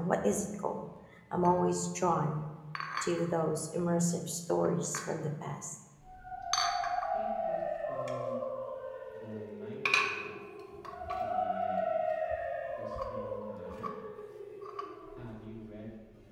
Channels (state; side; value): identical; both; correlation 1.00